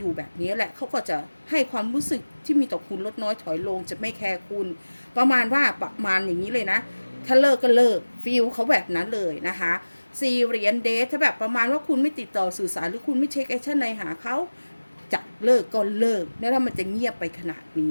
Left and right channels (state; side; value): inverted; both; correlation -1.00